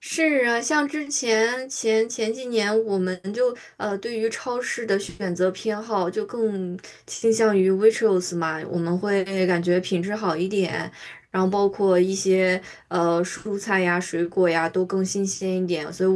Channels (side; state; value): both; identical; correlation 1.00